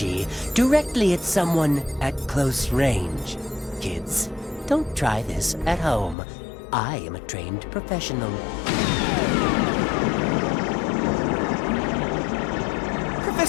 directly at someone at close range. Kids, don't try this at home. I am a trained professional.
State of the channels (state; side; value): drops out; right; at 6.2 s